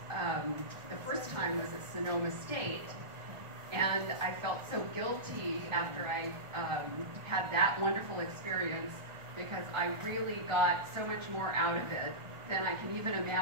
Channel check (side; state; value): left; late; 1.4 ms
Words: the first time was at Sonoma State, and I felt so guilty after I had that wonderful experience because I really got so much more out of it than I can even